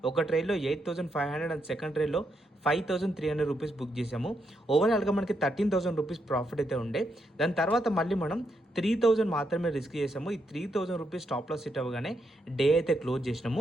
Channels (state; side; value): normal; both; correlation 0.80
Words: ఒక ట్రేడ్లో 8,500 అండ్ సెకండ్ ట్రేడ్లో 5,300 రూపీస్ బుక్ చేసాము. ఓవరాల్గా మనకి 13,000 రూపీస్ ప్రాఫిట్ అయితే ఉండే. దాని తర్వాత మళ్ళీ మనం 3,000 మాత్రమే రిస్క్ చేసాము. ఈ 3,000 రూపీస్ స్టాప్ లాస్ హిట్ అవ్వగానే డే అయితే క్లోజ్